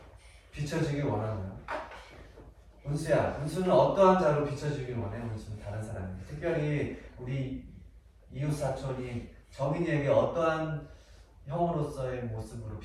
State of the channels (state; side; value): identical; both; correlation 1.00